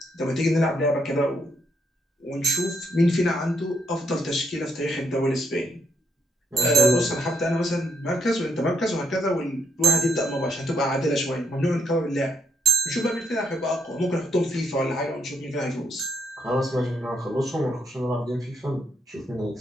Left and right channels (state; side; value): normal; both; correlation 0.72